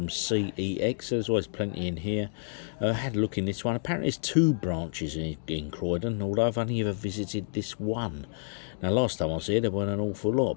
CEX. So there's always plenty in here. I had a look in this one. Apparently there's 2 branches in Croydon, although I've only ever visited this one. Now last time I was here there weren't an awful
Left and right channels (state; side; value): silent; right; digital silence